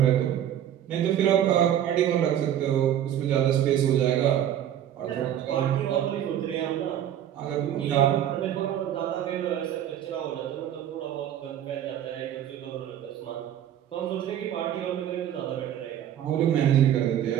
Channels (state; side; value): quieter; left; 10.7 dB